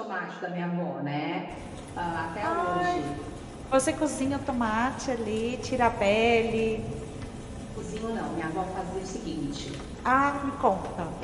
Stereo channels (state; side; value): identical; both; correlation 1.00